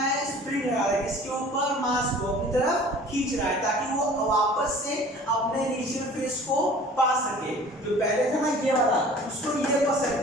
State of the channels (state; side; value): normal; both; correlation 0.46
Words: स्प्रिंग लगा रहा है, किसके ऊपर, मास को अपनी तरफ खींच रहा है ताकि वो वापस से अपने इनिशियल फेस को पा सके। जो पहले था ना ये वाला, उसको ये